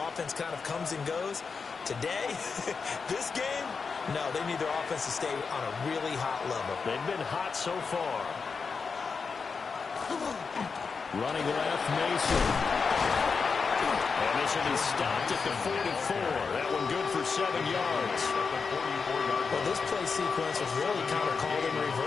offense kind of comes and goes. Today, this game, no, they need their offense to stay on a really hot level. They've been hot so far. Running left, Mason. And this will be stopped at the 44. That one good for 7 yards. Well, this play sequence was really kind of called in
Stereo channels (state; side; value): quieter; right; 5.2 dB